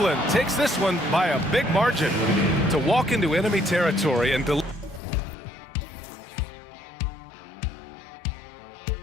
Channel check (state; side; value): drops out; right; at 5.0 s